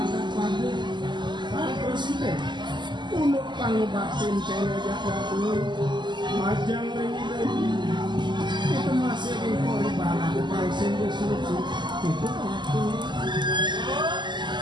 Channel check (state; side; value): late; left; 0.22 ms